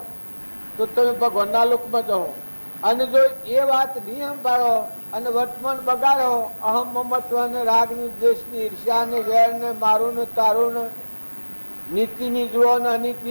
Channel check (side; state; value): both; inverted; correlation -1.00